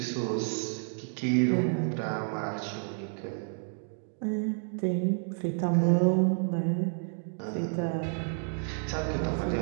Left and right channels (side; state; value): left; silent; 55 dB below the other